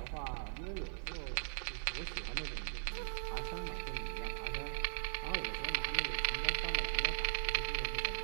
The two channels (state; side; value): silent; left; digital silence